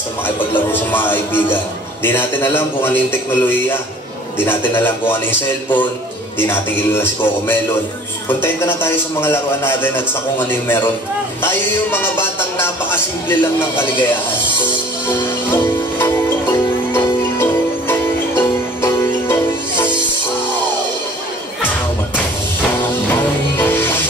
makipaglaro sa mga kaibigan. Di natin alam kung ano yung teknolohiya. Di natin alam kung ano yung cellphone. Di natin kilala si Coco Melon. Kontento na tayo sa mga laruan natin at sa kung ano yung meron. Tayo yung mga batang napakasimple lang ng kaligayahan.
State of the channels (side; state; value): both; normal; correlation 0.50